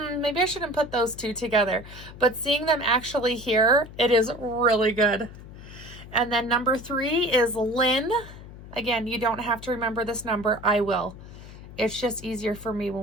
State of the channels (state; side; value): noise; left; hum, 16 dB below the sound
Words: maybe I shouldn't put those 2 together. But seeing them actually here, it is really good. And then number 3 is Lynn. Again, you don't have to remember this number. I will. It's just easier for me